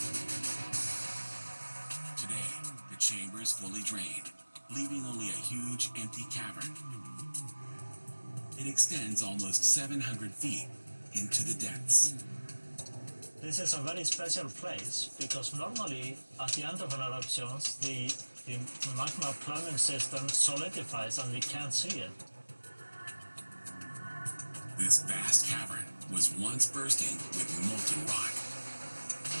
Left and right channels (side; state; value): both; inverted; correlation -1.00